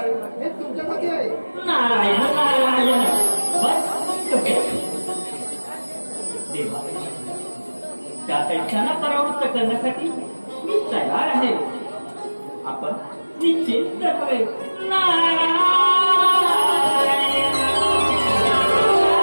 हे तुमच्यासाठी आहे. नारायण नारायण. बस देवा, त्या दैत्यांना परावृत्त करण्यासाठी मी तयार आहे. आपण निश्चित रहावे.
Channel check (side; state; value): both; inverted; correlation -1.00